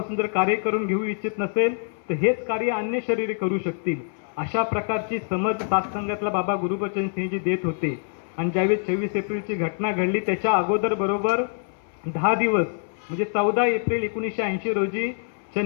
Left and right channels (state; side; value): silent; right; 57 dB below the other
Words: जर कार्य करून घेऊ इच्छित नसेल तर हेच कार्य अन्य शरीरे करू शकतील. अशा प्रकारची समज सत्संगातला बाबा गुरुबचन सिंहजी देत होते. आणि ज्यावेळी 26 एप्रिलची घटना घडली त्याच्या अगोदर बरोबर 10 दिवस म्हणजे 14 एप्रिल 1980 रोजी